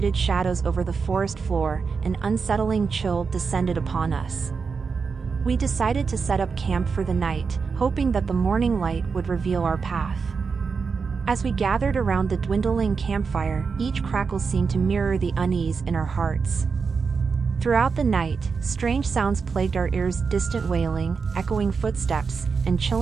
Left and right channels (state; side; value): quieter; left; 5.3 dB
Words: shadows over the forest floor, an unsettling chill descended upon us. We decided to set up camp for the night, hoping that the morning light would reveal our path. As we gathered around the dwindling campfire, each crackle seemed to mirror the unease in our hearts. Throughout the night, strange sounds plagued our ears: distant wailing, echoing footsteps, and